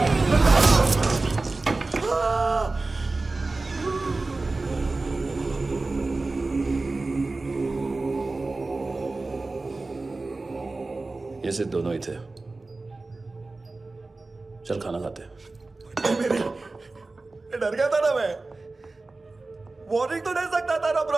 ये सिर्फ दोनों ही थे। चल खाना खाते। डर गया था ना मैं। वार्निंग तो दे सकता था ना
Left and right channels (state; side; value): quieter; left; 3.4 dB